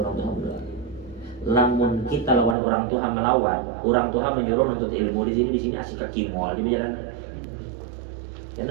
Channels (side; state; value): left; drops out; at 2.6 s